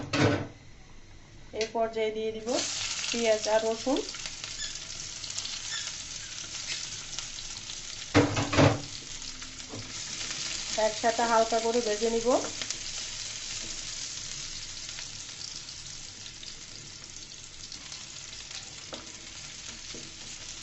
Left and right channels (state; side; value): identical; both; correlation 1.00